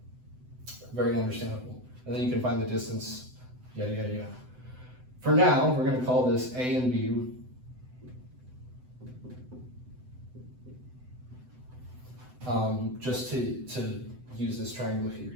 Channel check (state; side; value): late; left; 7.9 ms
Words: Very understandable. And then you can find the distance, yada, yada, yada. For now, we're going to call this A and B. Just to use this triangle here,